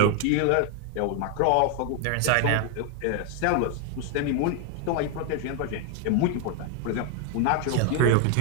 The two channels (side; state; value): both; different; correlation 0.00